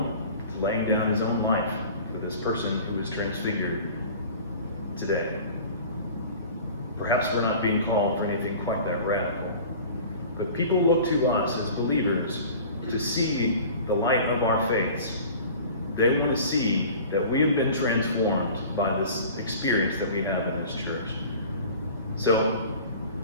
to laying down his own life for this person who is transfigured today. Perhaps we're not being called for anything quite that radical. But people look to us as believers to see the light of our faiths. They want to see that we have been transformed by this experience that we have in this church. So,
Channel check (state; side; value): inverted; both; correlation -0.42